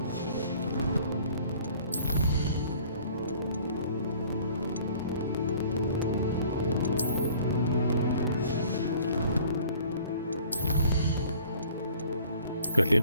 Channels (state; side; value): inverted; both; correlation -0.52